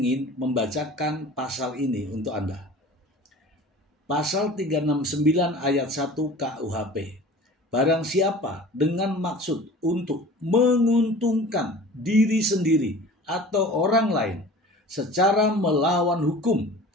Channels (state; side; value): normal; both; correlation 0.41